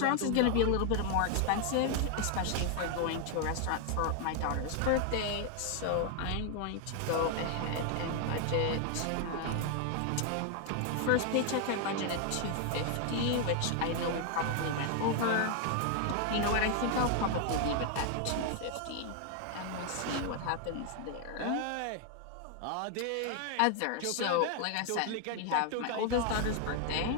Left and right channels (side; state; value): both; different; correlation 0.00